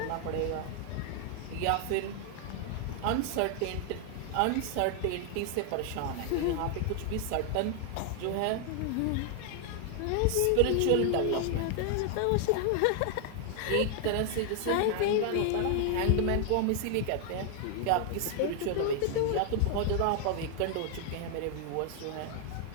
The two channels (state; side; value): different; both; correlation 0.00